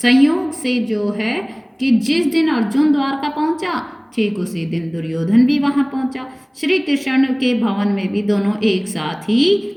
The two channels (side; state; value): both; identical; correlation 1.00